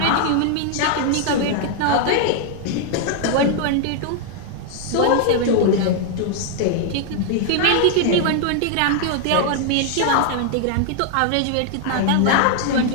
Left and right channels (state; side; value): different; both; correlation 0.00